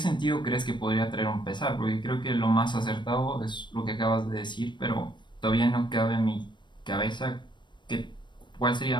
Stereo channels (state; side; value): late; right; 0.22 ms